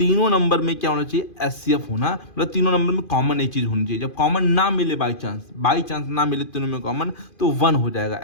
नंबर में क्या होना चाहिए, HCF होना, मतलब तीनों नंबर में कॉमन एक चीज होनी चाहिए। जब कॉमन ना मिले, बाई चांस ना मिले तीनों में कॉमन, तो 1 हो जाएगा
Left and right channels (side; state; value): right; late; 2.5 ms